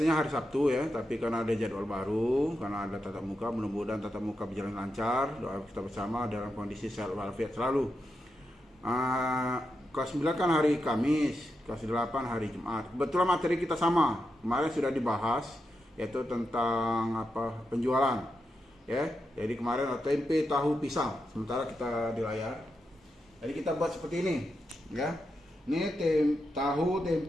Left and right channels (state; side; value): normal; both; correlation 0.86